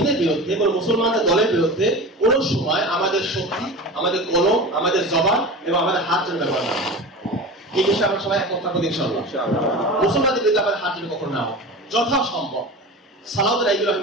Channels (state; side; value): normal; both; correlation 0.31